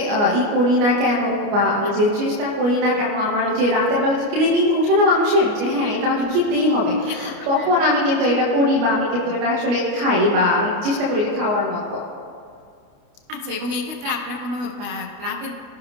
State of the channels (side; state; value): left; late; 29 ms